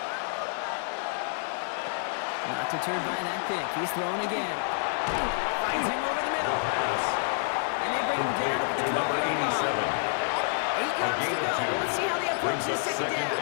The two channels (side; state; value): right; silent; digital silence